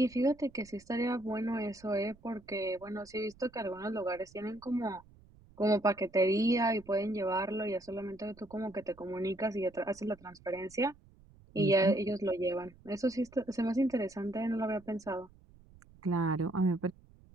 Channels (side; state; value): right; noise; rumble, 25 dB below the sound